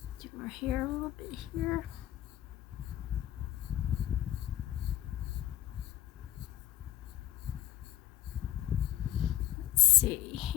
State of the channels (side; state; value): right; quieter; 14.3 dB